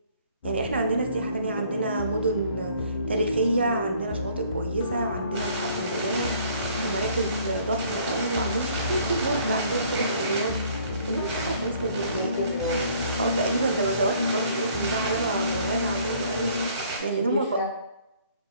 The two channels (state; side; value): inverted; both; correlation -0.59